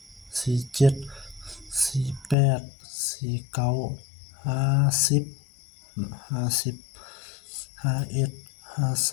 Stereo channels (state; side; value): drops out; right; at 2.4 s